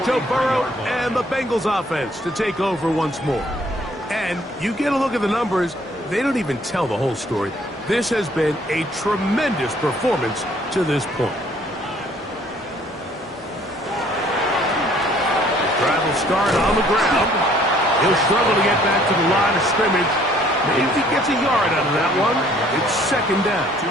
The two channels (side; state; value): both; normal; correlation 0.60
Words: Joe Burrow and the Bengals offense to take over once more. And you get a look at the numbers, they don't even tell the whole story. This has been a tremendous performance to this point. Drive will start on the ground. He'll struggle to get back to the line of scrimmage. Maybe gets a yard out of that one. It's second down. 2